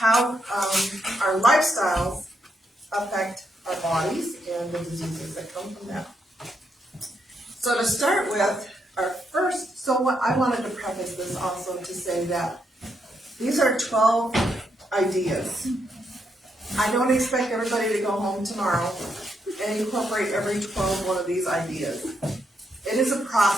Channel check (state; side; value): normal; both; correlation 0.79